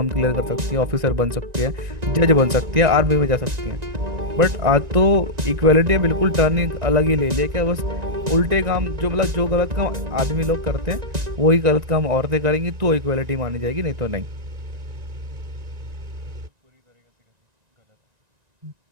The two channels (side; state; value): left; late; 1.9 ms